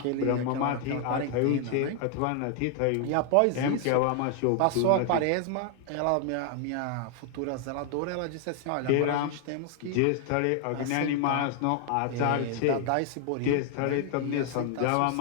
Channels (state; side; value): different; both; correlation 0.00